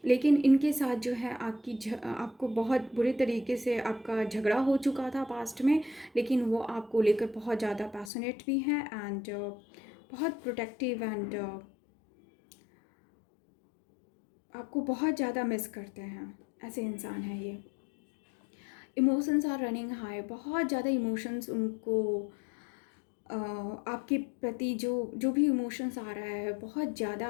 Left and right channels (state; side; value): drops out; right; at 8.1 s